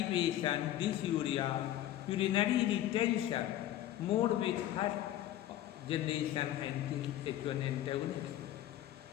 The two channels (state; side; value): quieter; right; 13.0 dB